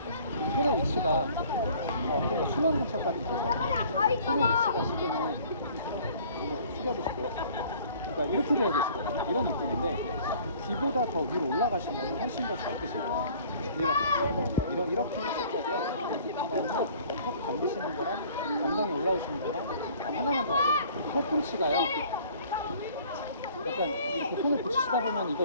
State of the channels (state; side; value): inverted; both; correlation -0.52